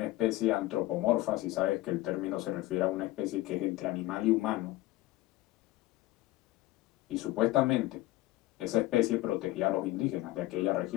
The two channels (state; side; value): quieter; right; 17.7 dB